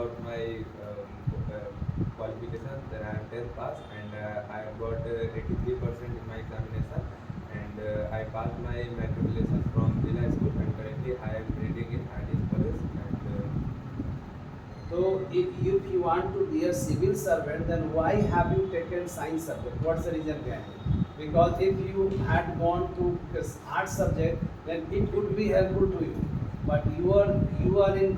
my qualification, then I am 10th pass, and I have got 83% in my examination, and I passed my matriculation from Villa School, and currently I am reading in ITS College. So if you want to be a civil servant, then why have you taken science subject? What's the reason behind it? Because if you had gone to art subject, then it could be helpful to you. But you are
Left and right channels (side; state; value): both; identical; correlation 1.00